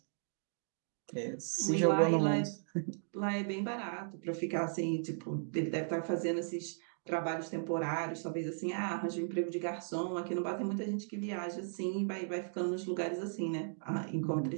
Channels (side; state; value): left; silent; digital silence